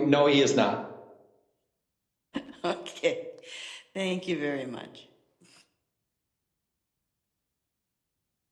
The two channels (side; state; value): both; identical; correlation 1.00